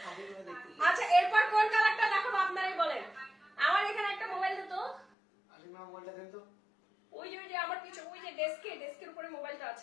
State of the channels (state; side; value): drops out; right; at 5.1 s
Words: আচ্ছা এরপর কোন কালারটা দেখাবো আপনারাই বলেন। আমার এখানে একটা মোবাইল দিত। মোবাইলটা দেন তো। ওই যে আমার কিছু ওই যে ডেস্কের উপরে মোবাইলটা